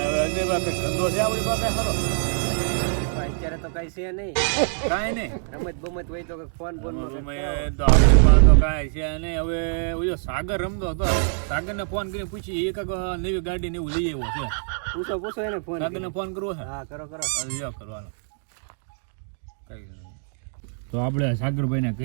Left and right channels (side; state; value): left; silent; digital silence